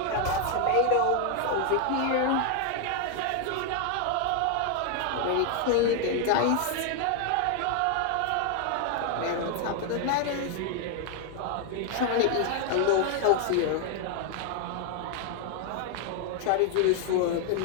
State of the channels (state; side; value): different; both; correlation 0.00